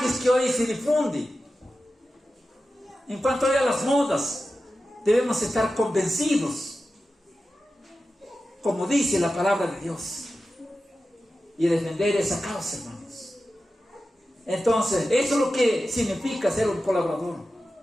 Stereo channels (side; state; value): both; normal; correlation 0.93